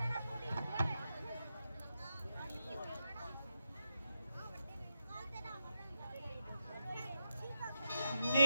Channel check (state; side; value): inverted; both; correlation -0.86